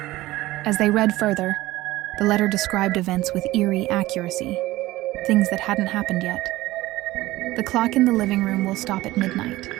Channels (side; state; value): left; quieter; 17.7 dB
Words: As they read further, the letter described events with eerie accuracy, things that hadn't happened yet. "The clock in the living room will stop at midnight,"